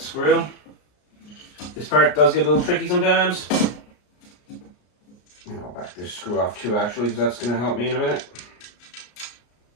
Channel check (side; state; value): right; late; 33 ms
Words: This part does get a little tricky sometimes. I'll back this screw off too, actually, because that's going to help me in a minute.